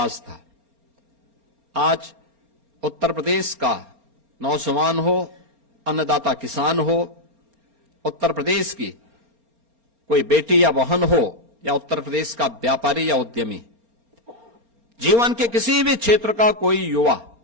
था। आज उत्तर प्रदेश का नौजवान हो, अन्नदाता किसान हो, उत्तर प्रदेश की कोई बेटी या बहन हो या उत्तर प्रदेश का व्यापारी या उद्यमी, जीवन के किसी भी क्षेत्र का कोई युवा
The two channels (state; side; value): late; left; 4.3 ms